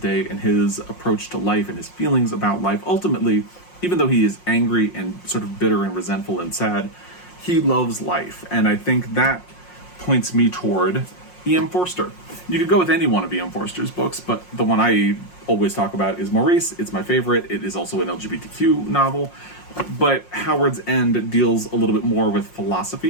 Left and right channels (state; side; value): late; right; 5.6 ms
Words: and his approach to life and his feelings about life. Ultimately, even though he is angry and sort of bitter and resentful and sad, he loves life. And I think that points me toward E.M. Forster. You could go with any one of E.M. Forster's books, but the one I always talk about is Maurice. It's my favorite. It is also an LGBTQ novel, but Howard's End deals a little bit more with